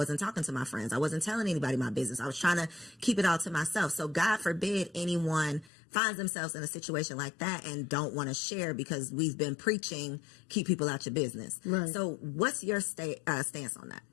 talking to my friends. I wasn't telling anybody my business. I was trying to keep it all to myself. So God forbid anyone finds themselves in a situation like that and don't want to share, because we've been preaching, keep people out your business. Right. So what's your stance on that?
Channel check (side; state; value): right; drops out; at 5.7 s